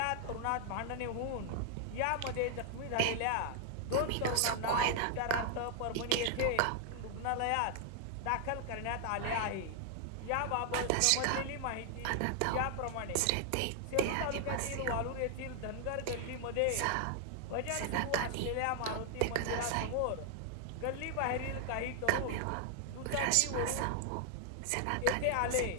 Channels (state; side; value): different; both; correlation 0.00